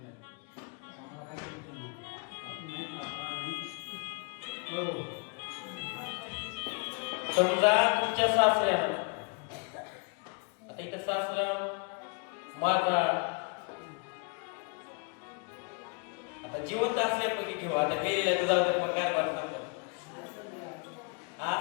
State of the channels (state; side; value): quieter; right; 34.5 dB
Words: समजा तुमच्या सासऱ्यानं, आता इथं सासरा माझा आता जिवंत असल्यापैकी घेऊ. आता मेलेल्या जाऊ तर मग काय वाटत